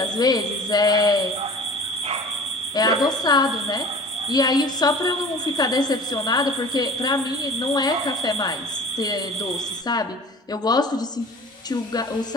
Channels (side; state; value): both; normal; correlation 0.41